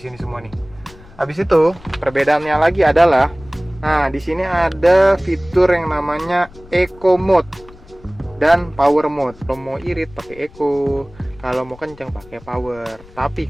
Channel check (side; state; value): left; noise; rumble, 22 dB below the sound